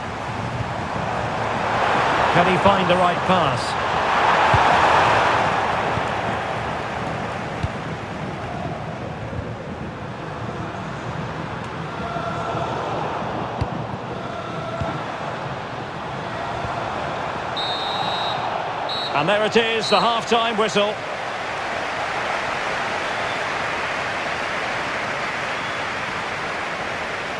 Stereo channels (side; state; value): both; identical; correlation 1.00